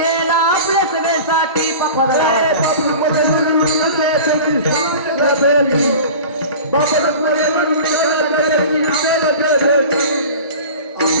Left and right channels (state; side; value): inverted; both; correlation -0.37